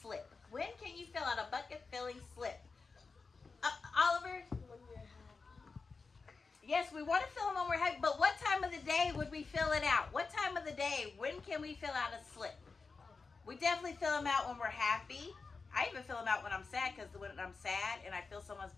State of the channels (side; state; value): right; quieter; 4.4 dB